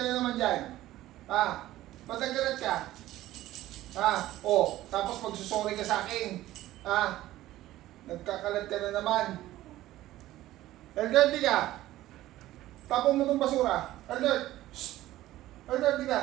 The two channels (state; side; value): quieter; left; 15.2 dB